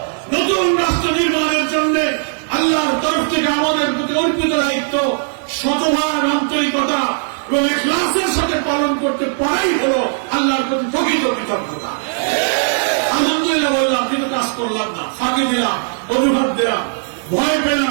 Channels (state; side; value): silent; left; 63 dB below the other